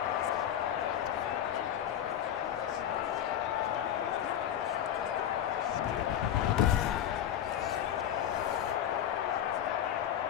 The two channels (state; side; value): quieter; right; 10.4 dB